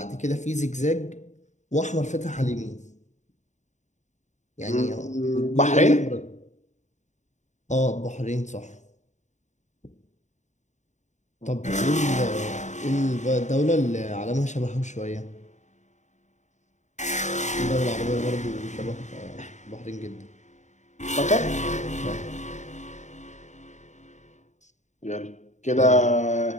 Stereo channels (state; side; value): late; right; 0.34 ms